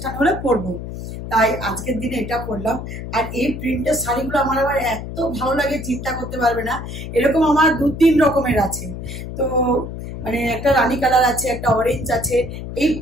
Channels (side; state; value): left; noise; hum, 8 dB below the sound